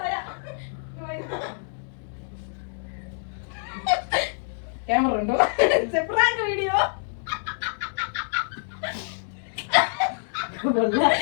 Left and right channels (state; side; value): silent; right; 61 dB below the other